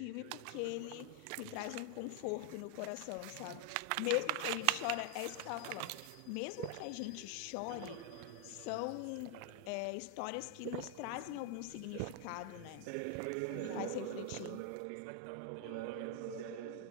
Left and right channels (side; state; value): both; different; correlation 0.00